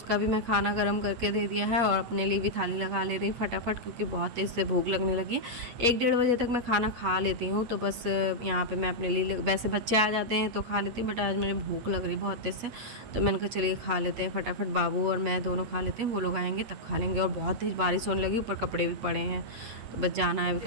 भी मैं खाना गर्म करके दे दिया है, और अपने लिए भी थाली लगा ले रही फटाफट, क्योंकि बहुत तेज़ से भूख लगने लगी है। 1-1:30 बजे तक मैं खाना खा लेती हूँ, तो बस यहाँ पे मैं अपने लिए, वैसे बच्चे आ जाते हैं तो खा लेती हूँ, बट आज मुझे भूख लग रही बहुत तेज़ से, तो मैंने कहा चलिए खा लेते हैं फटाफट। बाबू और मैं दोनों खा लेते हैं, वो लोग आएँगे तब खा लेंगे। और बहुत तेज़ बारिश होने लगी, ऊपर कपड़े भी पड़े हैं, तो बस जाना है अभी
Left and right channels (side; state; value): left; late; 8.4 ms